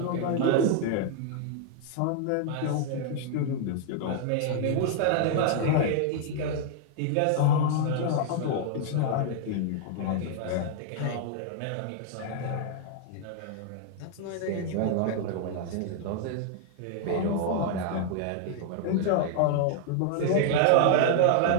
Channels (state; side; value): different; both; correlation 0.00